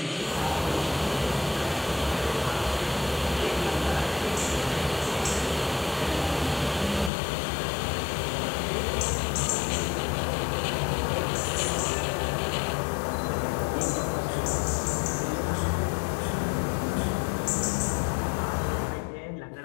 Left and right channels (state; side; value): drops out; right; at 7.1 s